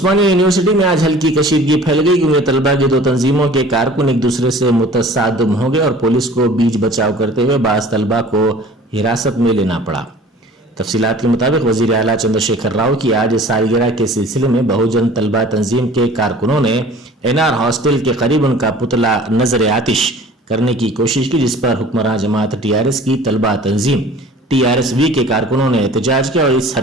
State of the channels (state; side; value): normal; both; correlation 0.46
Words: یونیورسٹی میں آج ہلکی کشیدگی پھیل گئی کیونکہ طلبہ کی 2 تنظیموں کے کارکن ایک دوسرے سے متصادم ہو گئے اور پولیس کو بیچ بچاؤ کرتے ہوئے بعض طلبہ کو حراست میں لینا پڑا۔ تفصیلات کے مطابق وزیر اعلیٰ چندر شیکھر راؤ کی آج سالگرہ کے سلسلے میں بہوجن طلبہ تنظیم کے کارکنوں نے NR ہاسٹل کے قریب ان کا پتلا نظر آتش کرنے کی کوشش کی، جس پر حکمراں جماعت TRS کی طلبہ تنظیم TRSV کے کارکنوں نے احتجاج کیا اور اس